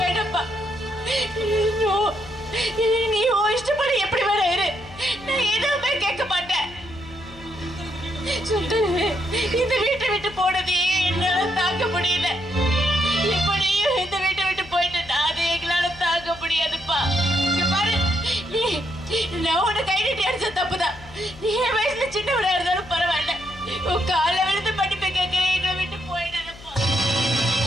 நீ இஷ்டப்படி எப்படி வேற இரு, நான் எதுவுமே கேட்க மாட்டேன். இந்த வீட்டை விட்டு போனதே என்னால தாக்க முடியல. இப்படியும் இந்த வீட்டை விட்டு போயிட்டு அது எங்களால தாக்க முடியாதுப்பா. இங்க பாரு, நான் உன்னை கை நீட்டி அடிச்ச தப்புதான். நீ என் வயசுல சின்னவரா இருந்தாலும் பரவாயில்ல, உன் காலை விழுந்து படிப்பை கேட்க எங்களை விட்டு போயிடணும்ப்பா.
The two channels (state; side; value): noise; left; hum, 19 dB below the sound